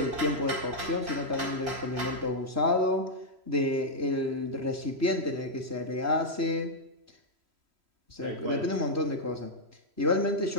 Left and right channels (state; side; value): late; left; 3.0 ms